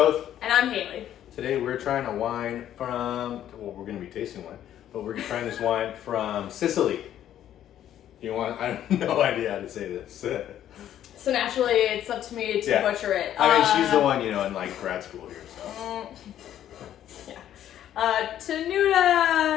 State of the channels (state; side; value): quieter; right; 11.2 dB